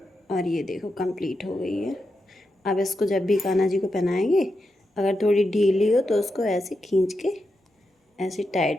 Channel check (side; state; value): both; normal; correlation 0.86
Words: और ये देखो कंप्लीट हो गई है। अब इसको जब भी कान्हा जी को पहनाएंगे, अगर थोड़ी ढीली हो तो उसको ऐसे खींच के ऐसे